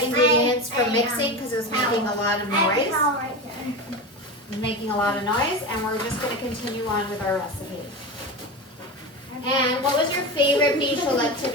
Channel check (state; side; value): normal; both; correlation 0.23